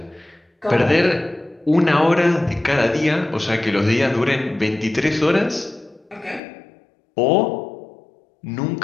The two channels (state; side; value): drops out; right; at 6.4 s